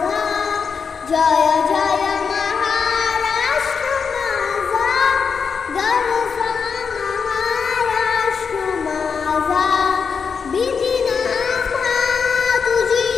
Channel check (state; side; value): quieter; right; 5.9 dB